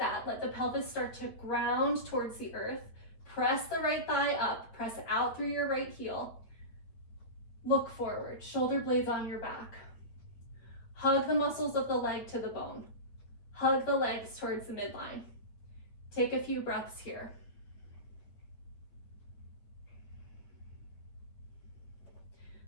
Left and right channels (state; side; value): late; right; 8.6 ms